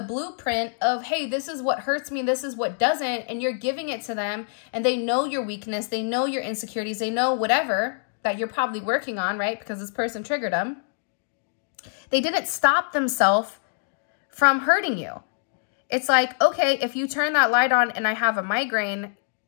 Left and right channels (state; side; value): silent; right; digital silence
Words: blueprint of, hey, this is what hurts me, this is what doesn't, and you're giving it to them, and they know your weakness, they know your insecurities, they know whatever that you're probably working on, right? Because this person triggered them. They didn't stop themselves from hurting you. It's like, okay, if you turn that light on and I have a migraine,